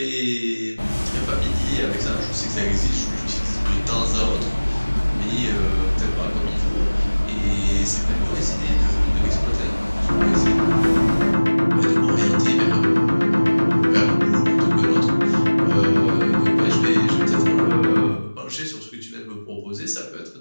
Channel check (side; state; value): both; inverted; correlation -1.00